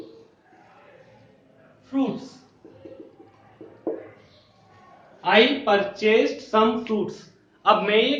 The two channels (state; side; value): identical; both; correlation 1.00